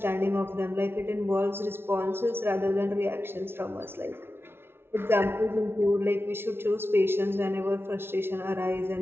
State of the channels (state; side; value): late; left; 0.11 ms